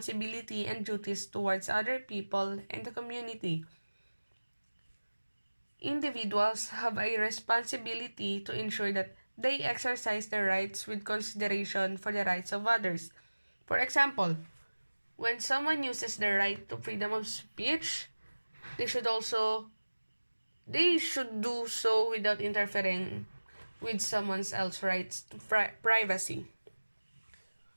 and duties towards other people and the community. Individuals have a responsibility to ensure that they exercise their rights with consideration for the rights of others. For example, when someone uses their right to freedom of speech, they should do so without interfering with someone else's rights to privacy.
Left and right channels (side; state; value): both; inverted; correlation -1.00